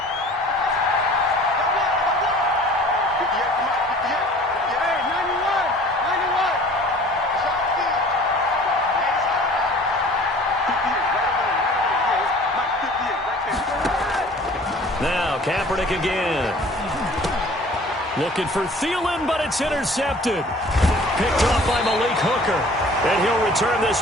Now, Kaepernick again. Looking for Thielen, but it's intercepted. Picked off by Malik Hooker. And he'll return this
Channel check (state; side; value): normal; both; correlation 0.48